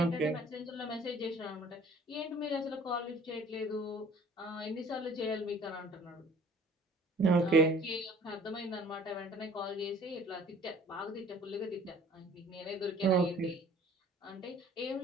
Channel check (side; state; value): both; normal; correlation 0.52